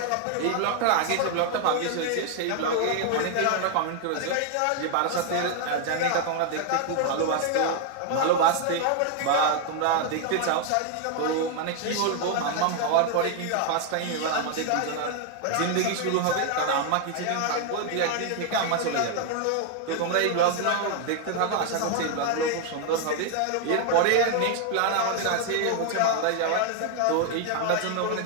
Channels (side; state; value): both; different; correlation 0.00